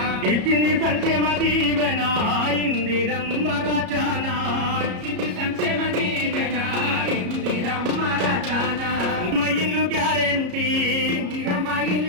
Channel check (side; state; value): left; late; 33 ms